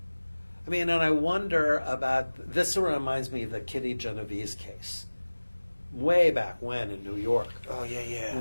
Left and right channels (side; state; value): both; inverted; correlation -1.00